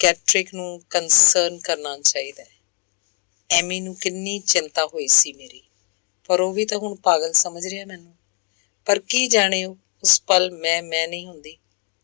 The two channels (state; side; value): quieter; right; 37.0 dB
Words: ਨੂੰ ਕੰਸਰਨ ਕਰਨਾ ਚਾਹੀਦਾ ਹੈ। ਐਮੀ ਨੂੰ ਕਿੰਨੀ ਚਿੰਤਾ ਹੋਈ ਸੀ ਮੇਰੀ, ਪਰ ਉਹ ਵੀ ਤਾਂ ਹੁਣ ਪਾਗਲ ਸਮਝ ਰਿਹਾ ਮੈਨੂੰ। ਪਰ ਕੀ ਜਾਣੇ ਉਹ ਉਸ ਪਲ ਮੈਂ ਨਹੀਂ ਹੁੰਦੀ।